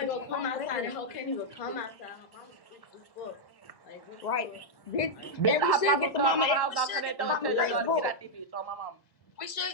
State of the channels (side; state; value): right; late; 2.0 ms